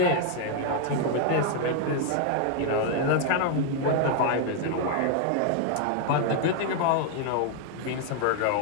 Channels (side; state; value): both; different; correlation 0.00